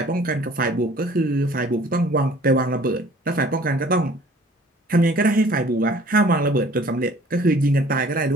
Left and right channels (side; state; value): both; normal; correlation 0.52